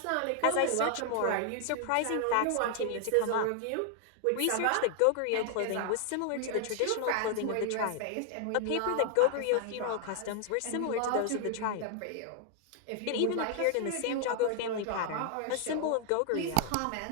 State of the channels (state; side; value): different; both; correlation 0.00